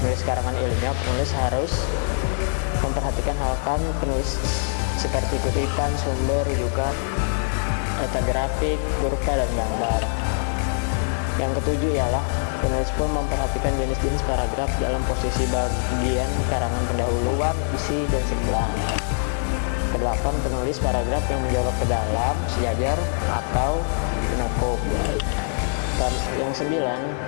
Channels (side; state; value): right; silent; 60 dB below the other